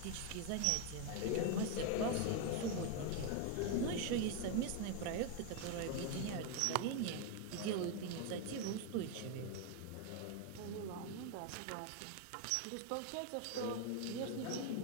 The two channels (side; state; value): both; different; correlation 0.01